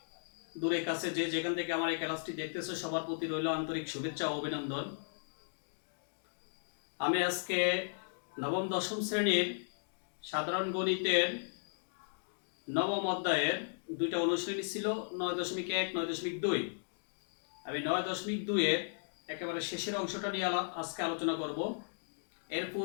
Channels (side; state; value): right; silent; digital silence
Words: দূরে কাছে যে যেখান থেকে আমার এই ক্লাসটি দেখতেছো সবার প্রতি রইল আন্তরিক শুভেচ্ছা ও অভিনন্দন। আমি আজকে নবম দশম শ্রেণীর সাধারণ গণিতের নবম অধ্যায়ের দুইটা অনুশ্রেণী ছিল, 9.1 9.2। আমি 9.2-এর একেবারে শেষের অংশটা নিয়ে আজকে আলোচনা করব। এর